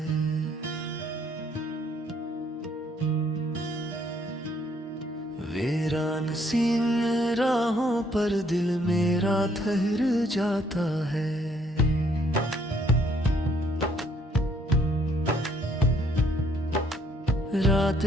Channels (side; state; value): both; normal; correlation 0.66